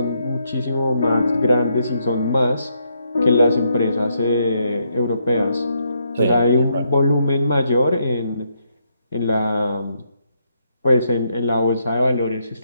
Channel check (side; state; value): both; inverted; correlation -0.77